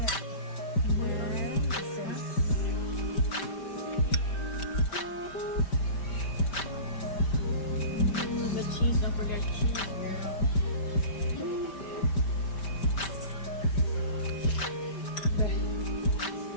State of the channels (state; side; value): late; right; 5.1 ms